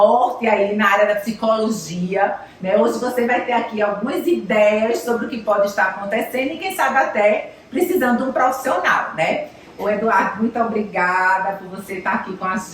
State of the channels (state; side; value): identical; both; correlation 1.00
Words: aí na área da psicologia, né? Hoje você vai ter aqui algumas ideias sobre o que pode estar acontecendo e quem sabe até precisando de um profissional, né? Ô Eduardo, muito obrigada por você estar aqui com a